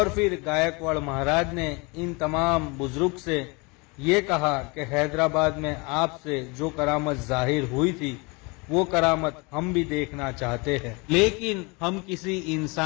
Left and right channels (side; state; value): right; quieter; 28.3 dB